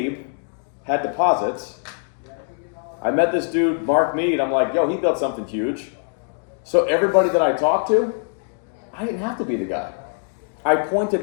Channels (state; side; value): silent; right; digital silence